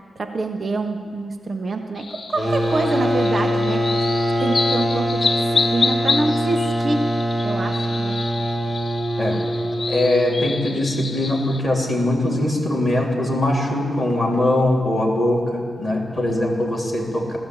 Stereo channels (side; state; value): both; normal; correlation 0.88